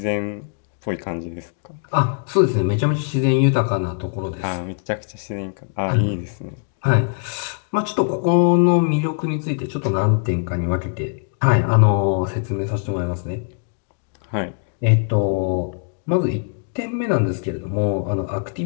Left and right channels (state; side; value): silent; right; digital silence